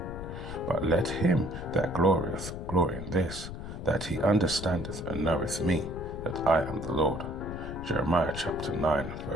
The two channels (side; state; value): left; noise; rumble, 8 dB below the sound